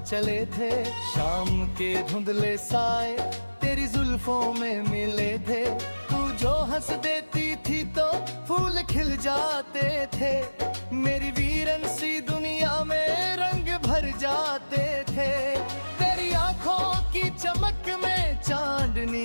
चले थे, शाम के धुंधले साए तेरी जुल्फों में मिले थे। तू जो हंस देती थी तो फूल खिल जाते थे, मेरी वीरन सी दुनिया में रंग भर जाते थे। तेरी आंखों की चमक में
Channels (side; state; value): both; inverted; correlation -1.00